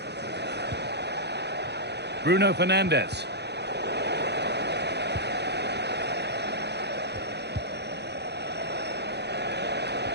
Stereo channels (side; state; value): left; late; 0.49 ms